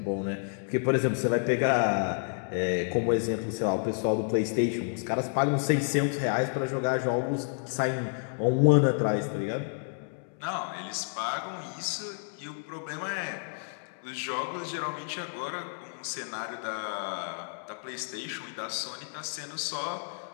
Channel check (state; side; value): silent; right; digital silence